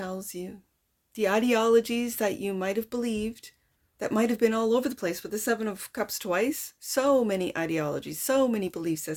you, the ideologies that you might have believed, that might have been all over the place with the 7 of Cups twice. So many ideologies, so many belief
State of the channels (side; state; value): both; identical; correlation 1.00